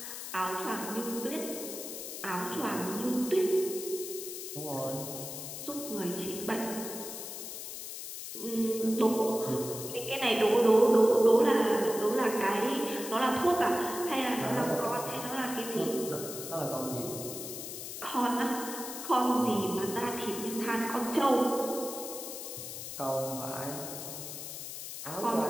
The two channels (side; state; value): left; noise; hiss, 8 dB below the sound